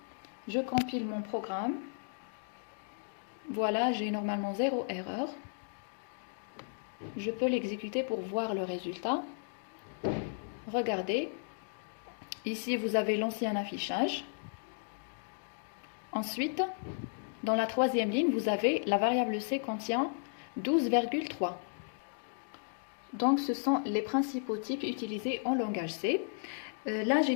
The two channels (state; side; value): silent; right; digital silence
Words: Je compile mon programme. Voilà, j'ai normalement 0 erreur. Je peux l'exécuter pour voir le résultat. Regardez. Ici, vous avez l'ancien affichage. Ensuite, dans la troisième ligne, vous avez la variable C contient 12,3. Donc, ce sont les principaux types utilisés en langage C. Là, j'ai